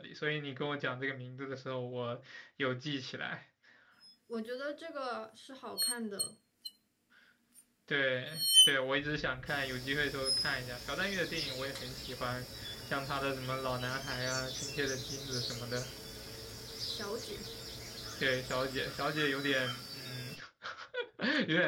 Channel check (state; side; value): identical; both; correlation 1.00